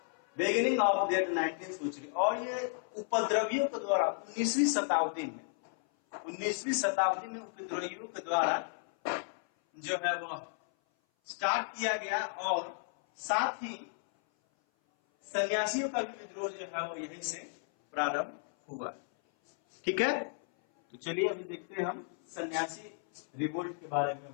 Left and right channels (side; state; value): right; silent; 55 dB below the other